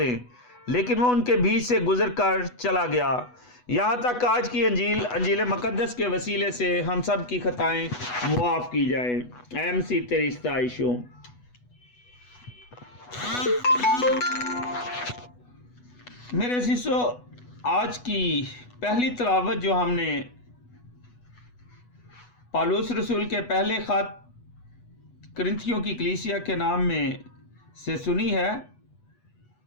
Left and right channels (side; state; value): right; late; 8.1 ms